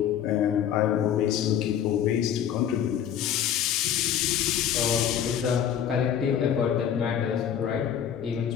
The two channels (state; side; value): quieter; right; 9.3 dB